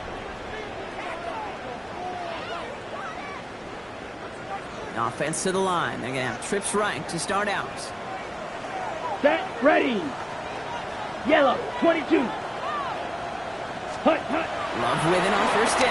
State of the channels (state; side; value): identical; both; correlation 1.00